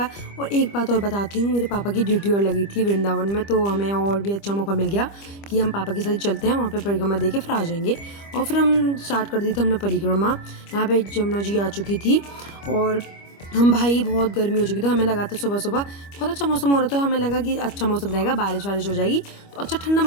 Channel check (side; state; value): right; late; 25 ms